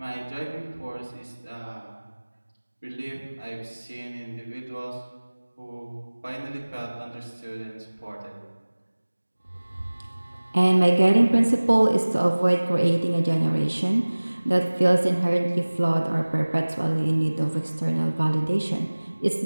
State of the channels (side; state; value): both; inverted; correlation -1.00